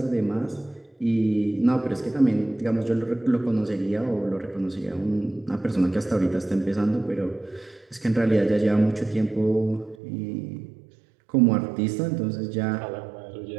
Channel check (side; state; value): left; drops out; at 10.0 s